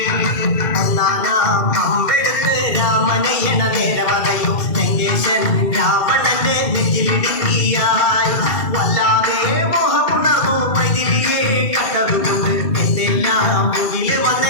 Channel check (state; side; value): late; right; 2.4 ms